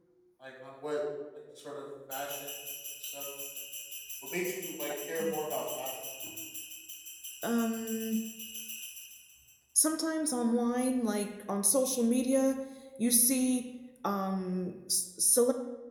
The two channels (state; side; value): identical; both; correlation 1.00